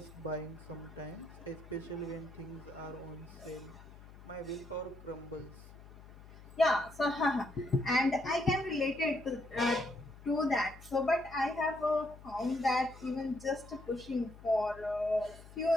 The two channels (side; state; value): left; noise; hum, 18 dB below the sound